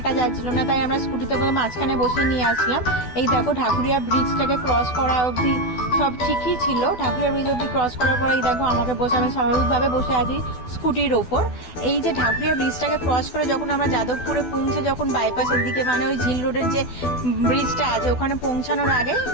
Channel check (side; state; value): right; late; 12 ms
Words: যাচ্ছিল না, তাই আমরা স্কুটিতে করে মাঝখানে বসে নিয়ে আসলাম। এই দেখো ঢাকুরিয়া ব্রিজটাকে ক্রস করা অবধি সব ঠিকই ছিল। ঢাকুরিয়া ব্রিজ অবধি ক্রস করার পরে এই দেখো আমাকে বসে, আমি স্বাভাবিকভাবে বসে আছি স্কুটির ওপর। এই যে ঢাকুরিয়া ব্রিজটাকে ক্রস করে যখন আমরা যাদবপুরে পৌঁছে, যখন বাইপাসের দিকে মানে ওই ঝিল রোডের যে ব্রিজটা আছে ওখানে পৌঁছানোর আগে